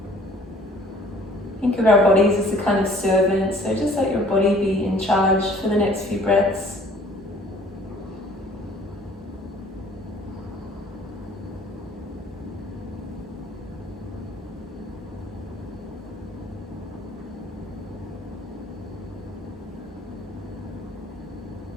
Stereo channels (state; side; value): normal; both; correlation 0.55